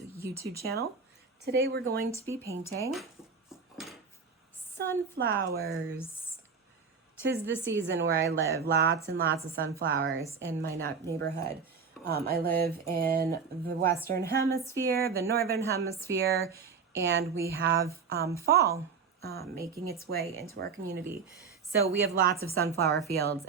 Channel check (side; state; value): left; quieter; 5.6 dB